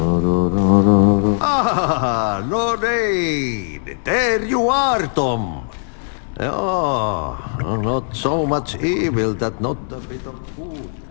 Ah, Lorraine! There you are, Tom. Oh, not so much evil that not a bit of good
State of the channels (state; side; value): silent; right; digital silence